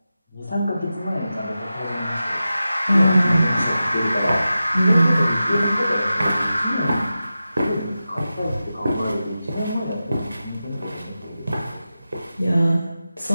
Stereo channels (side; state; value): both; inverted; correlation -0.93